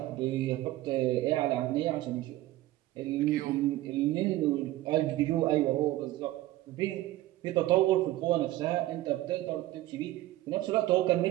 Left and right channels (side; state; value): left; quieter; 16.0 dB